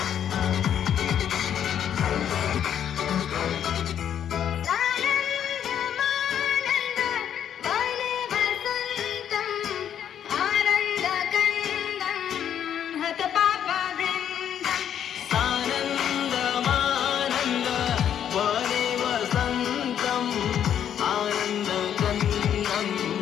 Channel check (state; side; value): quieter; right; 9.4 dB